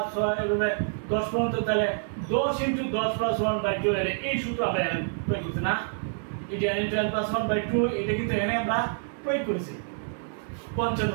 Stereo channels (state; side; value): silent; left; digital silence